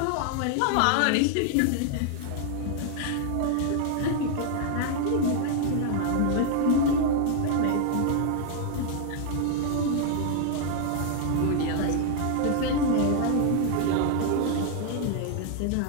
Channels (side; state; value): both; different; correlation 0.00